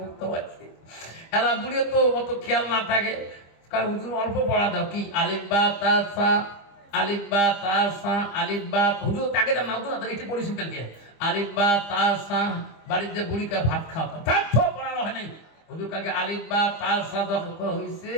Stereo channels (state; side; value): late; right; 25 ms